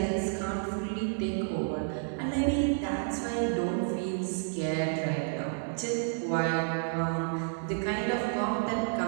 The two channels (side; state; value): left; silent; digital silence